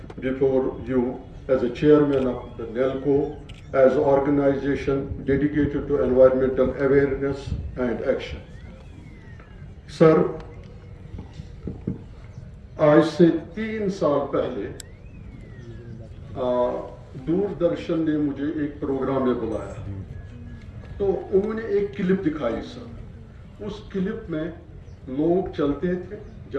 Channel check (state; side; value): identical; both; correlation 1.00